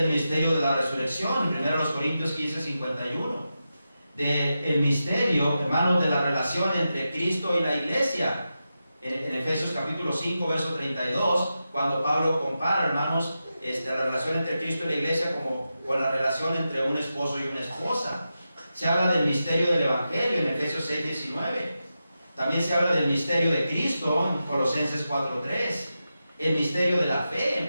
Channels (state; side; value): inverted; both; correlation -0.90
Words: misterio de la resurrección, en 1 Corintios 15:51. Del misterio, hermanos, de la relación entre Cristo y la iglesia, en Efesios capítulo 5, verso 32, cuando Pablo compara, hermanos, la relación entre Cristo y la iglesia como con la relación entre un esposo y una esposa. Se habla del misterio del evangelio en Efesios 6:19. También se habla del misterio de Cristo en Colosenses 4:3. El misterio de la fe en